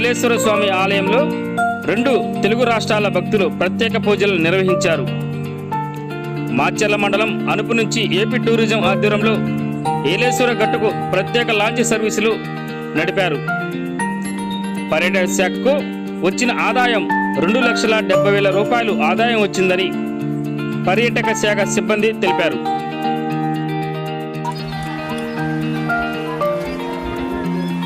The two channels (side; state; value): both; identical; correlation 1.00